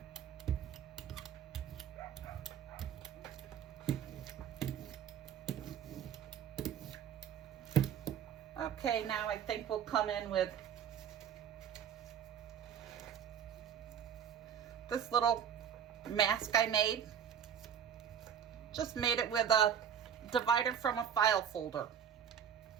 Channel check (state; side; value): quieter; left; 8.6 dB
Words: Okay, now I think we'll come in with this little mask I made. Just made it with a divider from a file folder.